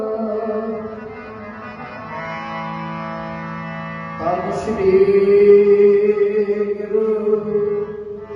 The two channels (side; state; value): both; identical; correlation 1.00